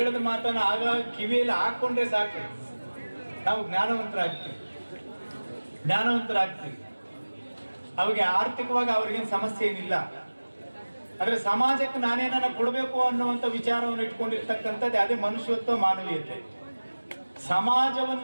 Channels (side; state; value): both; inverted; correlation -1.00